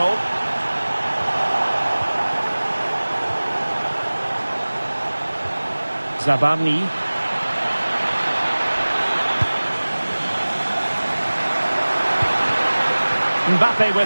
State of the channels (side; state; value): both; inverted; correlation -1.00